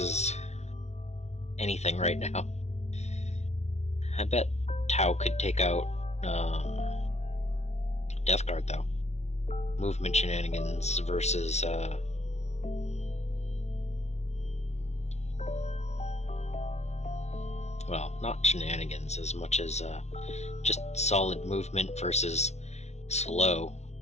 anything right now. I bet Tau could take out Death Guard, though. Movement shenanigans versus well, not shenanigans as much as just solid movement versus slow.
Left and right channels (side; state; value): right; late; 0.32 ms